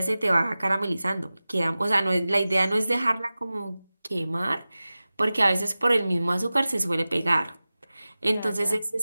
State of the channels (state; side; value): inverted; both; correlation -0.97